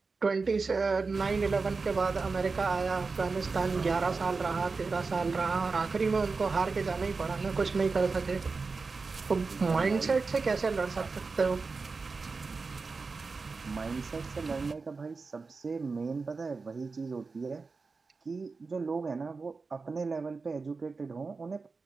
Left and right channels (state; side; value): quieter; left; 4.3 dB